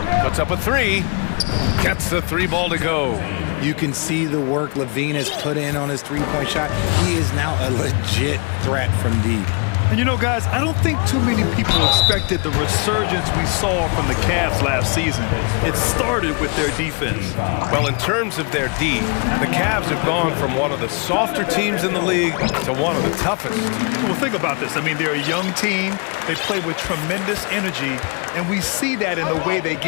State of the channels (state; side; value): quieter; right; 35.3 dB